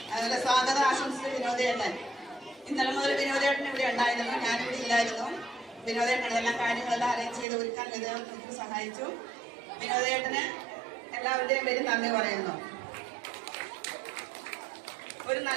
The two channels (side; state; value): left; drops out; at 7.5 s